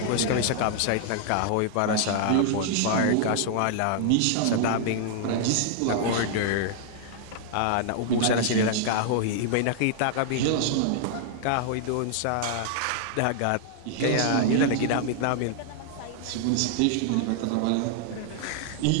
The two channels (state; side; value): different; both; correlation 0.00